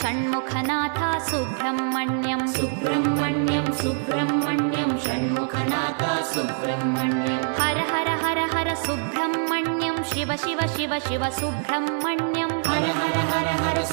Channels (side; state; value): left; silent; 62 dB below the other